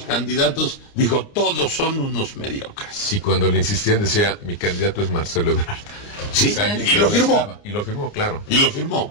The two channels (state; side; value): late; right; 29 ms